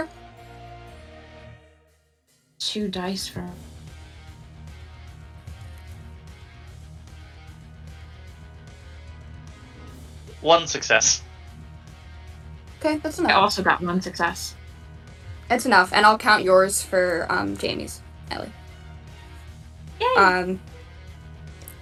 2 dice for... One success. Okay, that's I enough. also got 1 success. That's enough, and I'll count yours for Jamie's, Ellie. Yay!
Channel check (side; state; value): both; identical; correlation 1.00